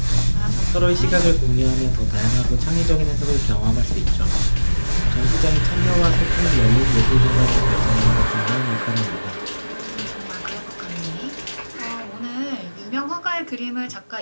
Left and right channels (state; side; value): inverted; both; correlation -1.00